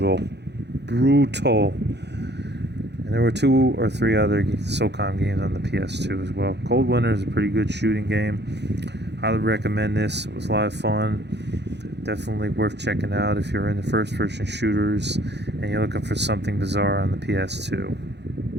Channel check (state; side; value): late; left; 0.50 ms